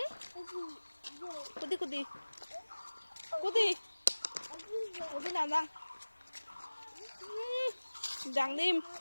কুদি কুদি কুদি উদি না যাং। যাং দিম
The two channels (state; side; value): inverted; both; correlation -1.00